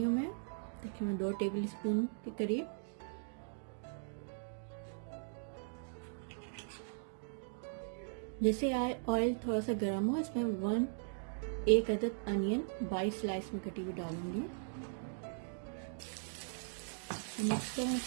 हूँ मैं। देखिए मैं 2 टेबल स्पून के करीब। जैसे ऑयल थोड़ा सा गर्म हो, इसमें 1 अदद अनियन 22 स्लाइस में कटी हुई डालूंगी। मिक्स करें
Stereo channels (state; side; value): silent; left; digital silence